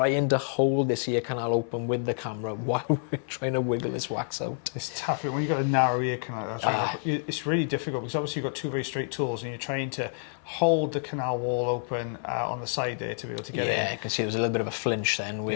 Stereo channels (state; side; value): silent; right; 55 dB below the other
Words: to hold this ear canal open with the camera while we're trying to wiggle this wax out. It's tough when you've got a narrow ear canal. It's really difficult, because obviously you've got two very straight tools and you're trying to hold the canal wall open on the side there to be able to get in. Yeah, you can see there's a little bit of a flinch then